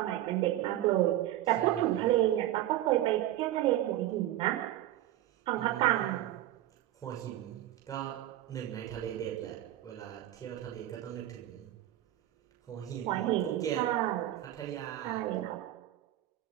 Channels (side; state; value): left; quieter; 13.8 dB